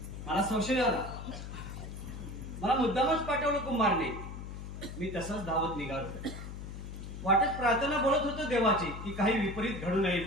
मला संशय आला. मला मुद्दामच पाठवलं कुमारने. मी तसंच धावत निघालो. वाटत प्रार्थना बोलत होतो देवाची की काही विपरीत घडू नये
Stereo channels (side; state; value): left; noise; hum, 8 dB below the sound